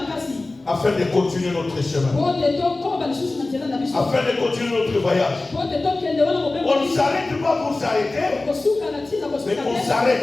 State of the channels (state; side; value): quieter; right; 3.1 dB